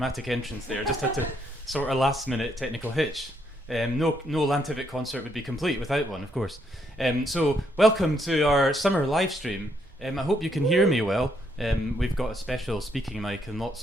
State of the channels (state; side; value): normal; both; correlation 0.74